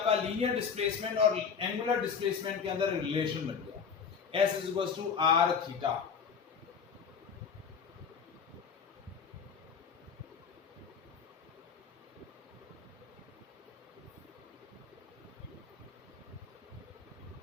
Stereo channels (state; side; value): quieter; right; 6.3 dB